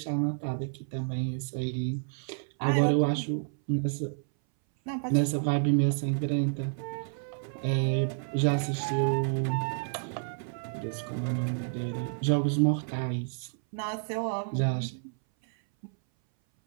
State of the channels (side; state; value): left; silent; 58 dB below the other